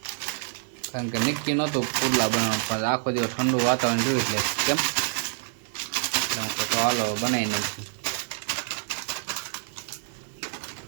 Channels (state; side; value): silent; left; 60 dB below the other